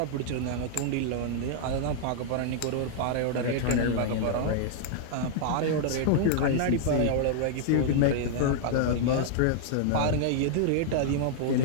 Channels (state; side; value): different; both; correlation -0.01